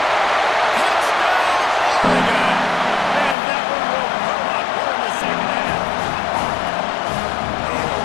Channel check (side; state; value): right; drops out; at 3.4 s